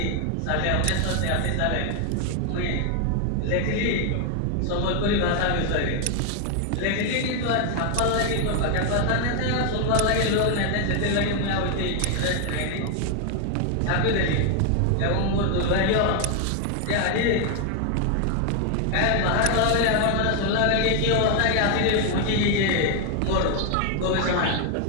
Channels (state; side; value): different; both; correlation 0.00